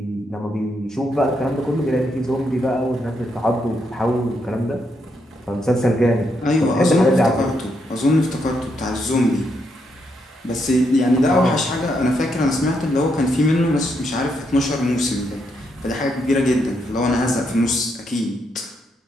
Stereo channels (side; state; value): both; normal; correlation 0.79